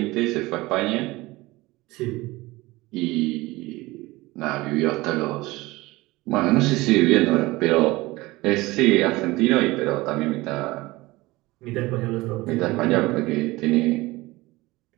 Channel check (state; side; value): quieter; left; 20.5 dB